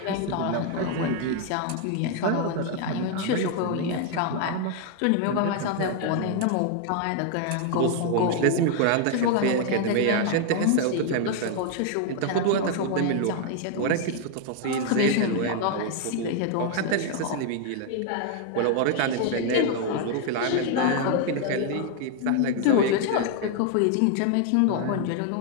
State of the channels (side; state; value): both; different; correlation 0.00